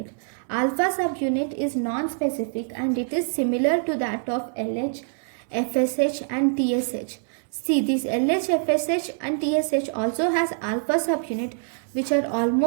Alpha subunit is non-specific and it is similar to that of LH, FSH and TSH. See, this LH, FSH and TSH also has alpha subunit which are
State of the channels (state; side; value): silent; left; 62 dB below the other